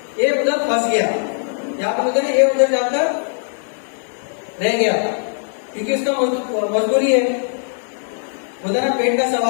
ये उधर फंस गया। यहाँ पर बोलते ये उधर जाकर रह गया, क्योंकि उसका मजबूरी है, बोलते ना पेट का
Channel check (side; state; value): right; silent; digital silence